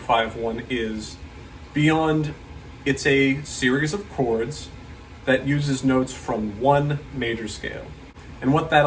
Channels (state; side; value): identical; both; correlation 1.00